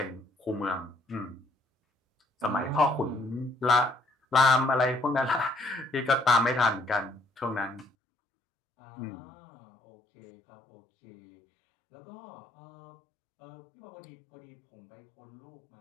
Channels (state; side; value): drops out; right; at 7.9 s